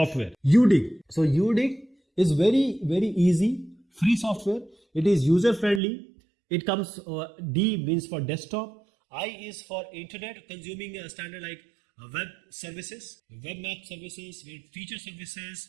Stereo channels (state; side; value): drops out; left; at 5.8 s